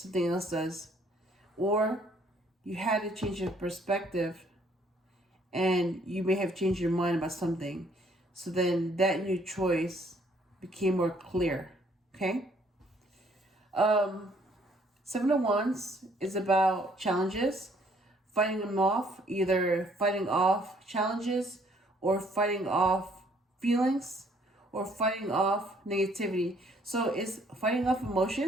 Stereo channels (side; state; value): both; normal; correlation 0.64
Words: else does. Or you had to change your perspective, and you may have changed your mind about something. So then that new choice became more clear. Okay? 7 of Wands is about challenges, fighting them off, either fighting off challenges or fighting off feelings or fighting off negativity. So it's fighting off